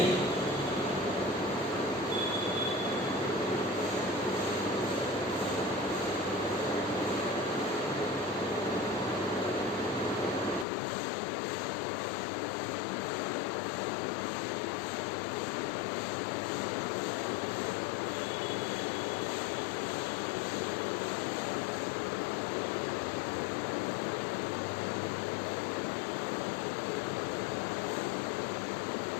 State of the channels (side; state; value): right; drops out; at 10.7 s